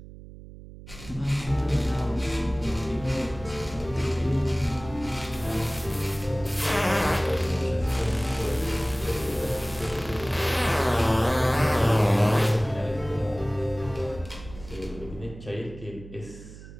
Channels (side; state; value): right; noise; hum, 16 dB below the sound